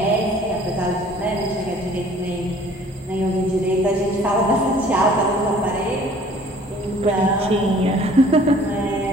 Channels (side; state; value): both; normal; correlation 0.53